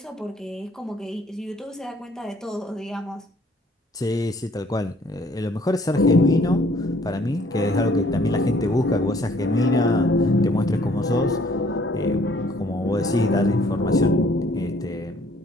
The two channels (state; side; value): normal; both; correlation 0.60